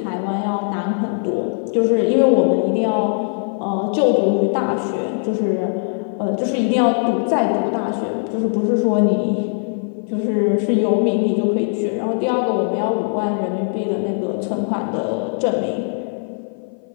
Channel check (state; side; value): silent; right; 57 dB below the other